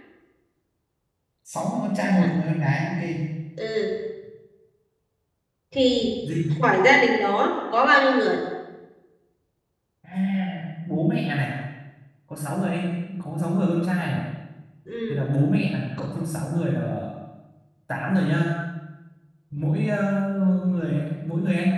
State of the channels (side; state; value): both; identical; correlation 1.00